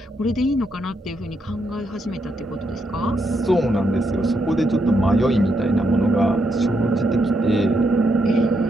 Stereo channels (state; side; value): normal; both; correlation 0.79